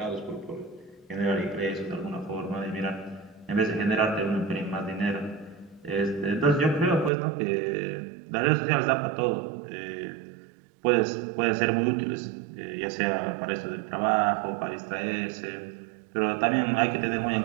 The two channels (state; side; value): drops out; left; at 7.1 s